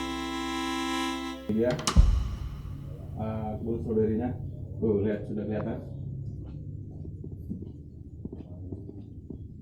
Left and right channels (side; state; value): both; identical; correlation 1.00